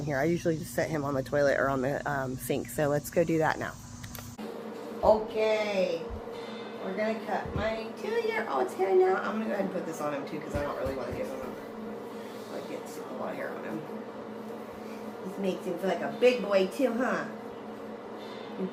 here. I usually just set him on the toilet or on the sink. So let's go do that now. Okay. We're going to cut my 2-year-old's hair now. I'm going to go ahead and put this on him too because I don't really want to give him a lot of hair on him. This makes him feel like a big boy too, huh? You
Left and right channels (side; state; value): both; identical; correlation 1.00